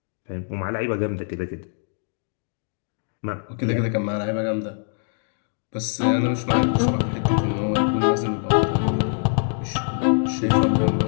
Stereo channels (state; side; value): silent; right; 59 dB below the other